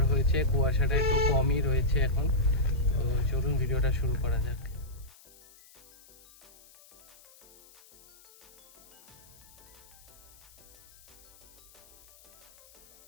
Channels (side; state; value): left; noise; hiss, 24 dB below the sound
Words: হয়েছে, কুয়াশাটা একটু কমই রয়েছে এখন। তো চলুন ভিডিওটা শুরু করা যাক।